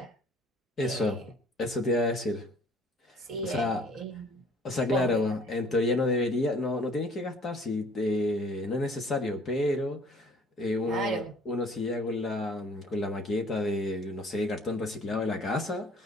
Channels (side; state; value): both; normal; correlation 0.55